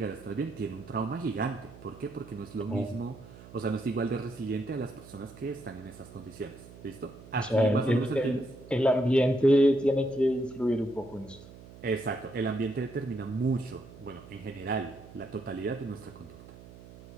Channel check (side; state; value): right; noise; hum, 18 dB below the sound